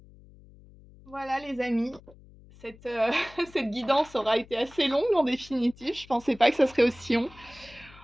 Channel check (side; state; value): left; noise; hum, 23 dB below the sound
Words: Voilà les amis, cette, cette guidance aura été assez longue en définitive. Je pensais pas que ça serait aussi long.